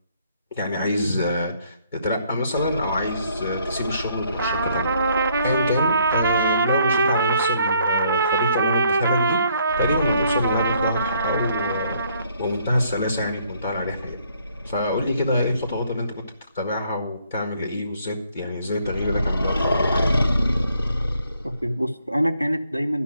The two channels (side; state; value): both; inverted; correlation -0.67